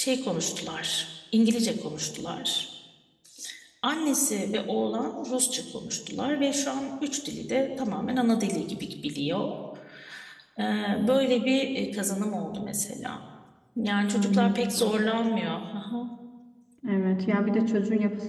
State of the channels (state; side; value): identical; both; correlation 1.00